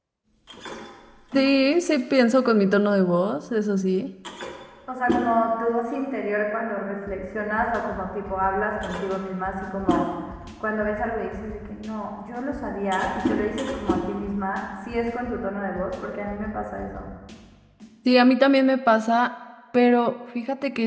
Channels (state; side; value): identical; both; correlation 1.00